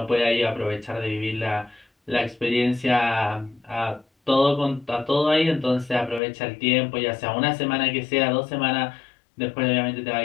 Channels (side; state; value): right; drops out; at 6.2 s